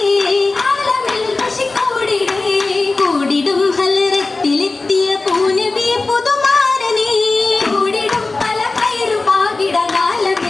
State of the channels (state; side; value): quieter; right; 3.5 dB